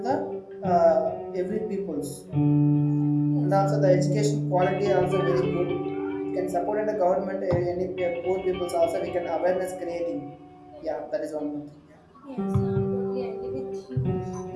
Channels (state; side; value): identical; both; correlation 1.00